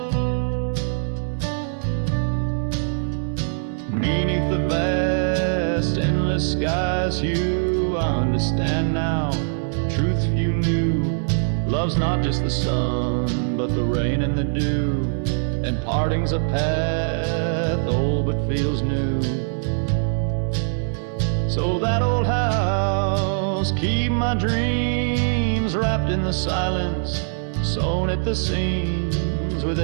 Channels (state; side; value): silent; left; 64 dB below the other